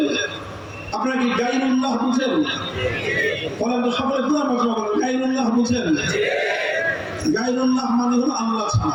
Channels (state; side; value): identical; both; correlation 1.00